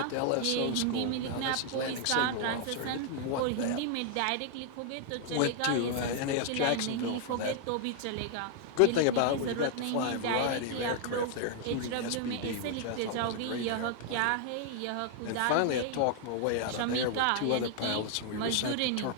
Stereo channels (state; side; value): different; both; correlation 0.00